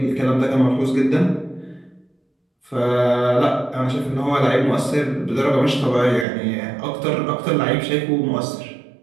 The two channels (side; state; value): left; drops out; at 6.2 s